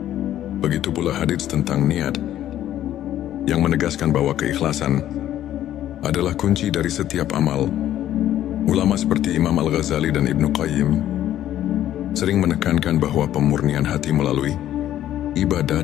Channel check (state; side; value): quieter; right; 12.2 dB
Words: Begitu pula hadits tentang niat yang menegaskan bahwa keikhlasan adalah kunci dari setiap amal. Ulama seperti Imam Al-Ghazali dan Ibnu Qayyim sering menekankan bahwa pemurnian hati melalui ibadah